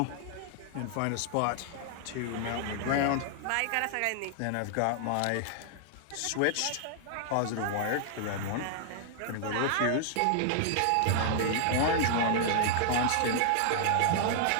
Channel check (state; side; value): different; both; correlation 0.00